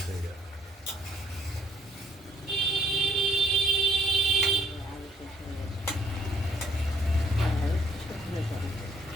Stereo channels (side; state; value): both; normal; correlation 0.63